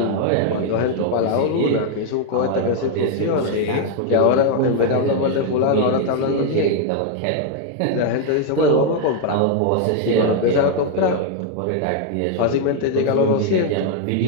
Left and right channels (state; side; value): different; both; correlation 0.00